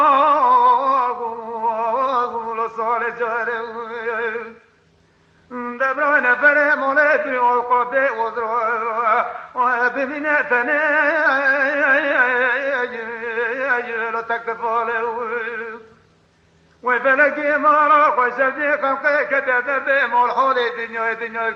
لصالي جاري دبرنا فري مولدي وقبي وزروا وبمنتني لا تكفالي وفلكي مارا خشتي خلقي كتدب مول حولي دنيا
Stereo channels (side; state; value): both; identical; correlation 1.00